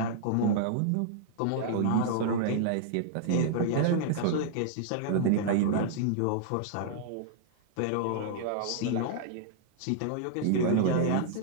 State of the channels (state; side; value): different; both; correlation -0.01